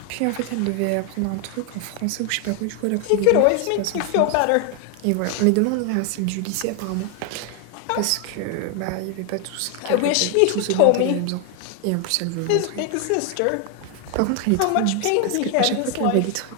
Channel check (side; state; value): both; different; correlation 0.01